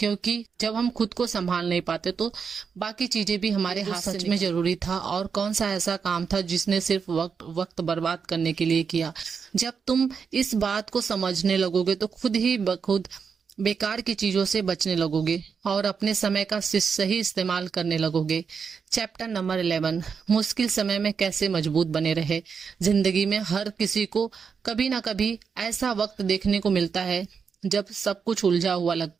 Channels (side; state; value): left; quieter; 6.1 dB